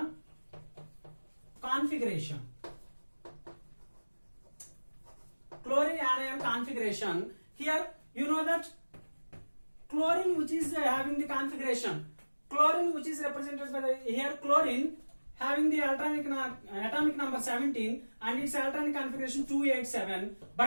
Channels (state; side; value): inverted; both; correlation -1.00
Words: configuration. Chlorine anion configuration. Here you know that chlorine which is having the configuration. Chlorine which is represented by the here chlorine having the atomic number 17 and its electronic configuration 287.